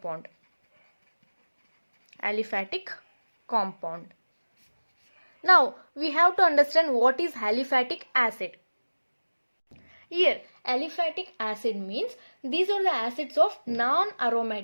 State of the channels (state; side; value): inverted; both; correlation -1.00